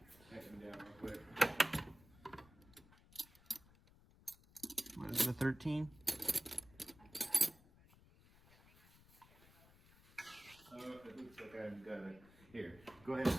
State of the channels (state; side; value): noise; left; rumble, 24 dB below the sound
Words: Tighten them down real quick. What is it, a 13? Oh, it looks like I've got it. Here, go ahead and